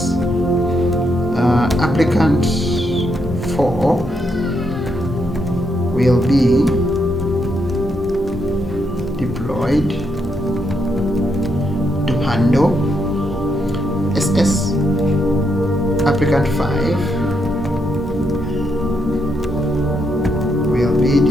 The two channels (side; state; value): both; normal; correlation 0.79